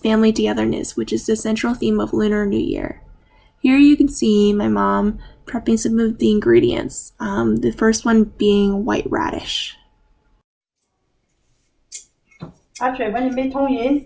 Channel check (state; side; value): identical; both; correlation 1.00